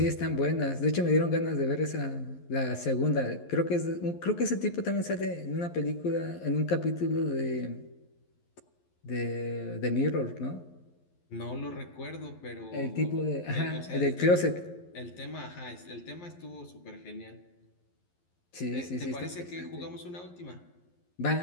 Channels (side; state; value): right; late; 11 ms